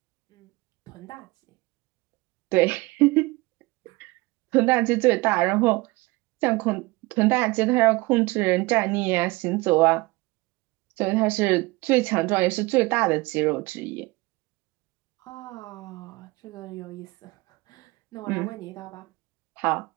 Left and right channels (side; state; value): left; quieter; 22.8 dB